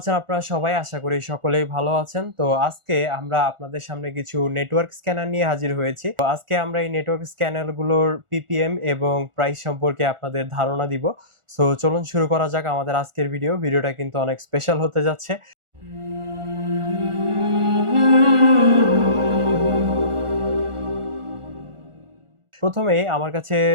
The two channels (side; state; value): left; late; 1.4 ms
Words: আপনারা সবাই? আশা করি সকলেই ভালো আছেন। তো আজকে আমরা আপনাদের সামনে কিছু নেটওয়ার্ক স্ক্যানার নিয়ে হাজির হয়েছি। তো আজকে আমরা এই নেটওয়ার্ক স্ক্যানার গুলোর পিপিএম এবং প্রাইস সম্পর্কে আপনাদের ধারণা দিব। সো চলুন শুরু করা যাক আমাদের আজকের ভিডিওটা কিন্তু অনেক স্পেশাল হতে যাচ্ছে। প্রথমেই আমার কাছে